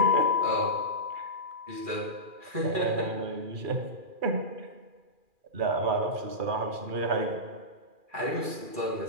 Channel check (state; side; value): late; left; 2.4 ms